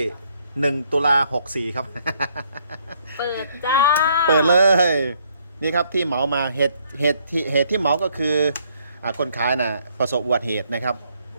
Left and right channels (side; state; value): both; inverted; correlation -0.69